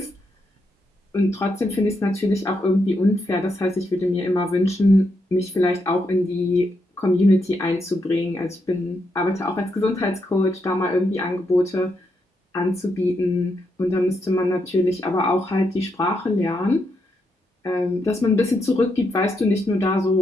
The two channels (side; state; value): both; normal; correlation 0.81